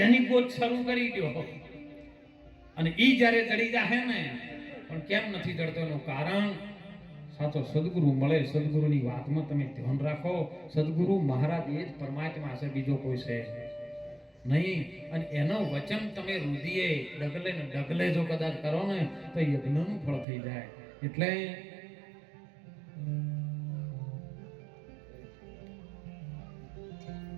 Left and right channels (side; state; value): left; drops out; at 20.2 s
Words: એની ગોત શરૂ કરી દો. અને ઈ જ્યારે ચડી જાય ને, પણ કેમ નથી ચડતો એનું કારણ સાચો સદગુરુ મળે. સદગુરુની વાતમાં તમે ધ્યાન રાખો. સદગુરુ મહારાજ એ જ પરમાત્મા છે, બીજો કોઈ છે નહીં. અને એનો વચન તમે રુધિએ ડગલે ને ડગલે જો કદાચ કરો ને તો યજ્ઞનું ફળ થઈ જાય.